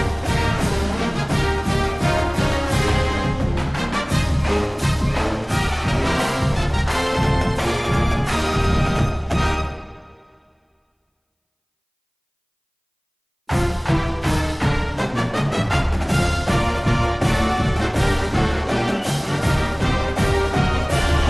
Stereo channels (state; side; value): identical; both; correlation 1.00